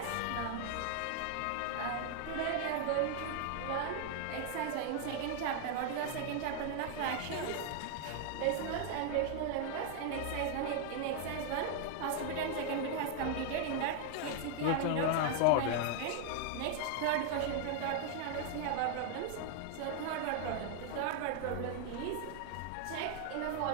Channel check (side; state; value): both; different; correlation 0.00